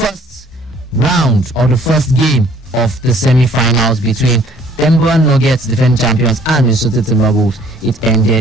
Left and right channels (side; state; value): both; normal; correlation 0.58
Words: round or the first game of the semi-finals between Denver Nuggets, defending champions, and Minnesota Timberwolves, it